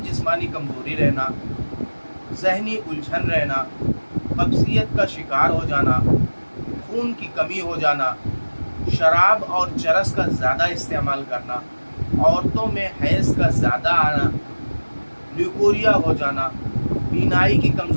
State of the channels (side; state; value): both; inverted; correlation -1.00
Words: जिस्मानी कमज़ोरी रहना, ज़हनी उलझन रहना, कब्ज़ियत का शिकार हो जाना, खून की कमी हो जाना, शराब और चरस का ज़्यादा इस्तेमाल करना, औरतों में हैज़ का ज़्यादा आना, ल्यूकोरिया हो जाना, बीनाई की